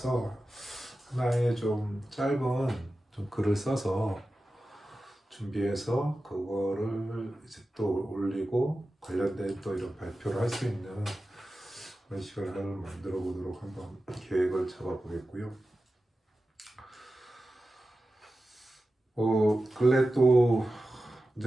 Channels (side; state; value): both; normal; correlation 0.94